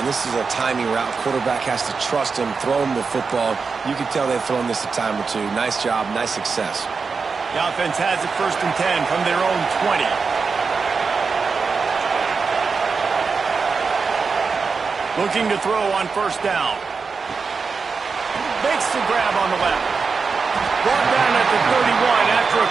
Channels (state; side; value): quieter; left; 4.9 dB